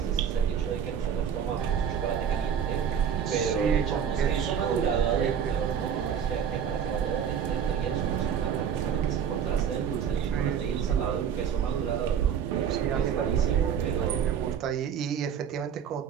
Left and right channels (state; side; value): quieter; left; 8.0 dB